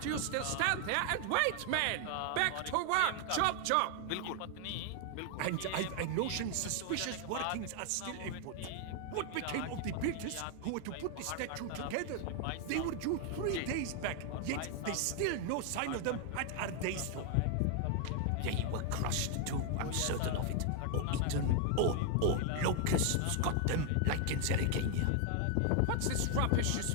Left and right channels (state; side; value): different; both; correlation 0.00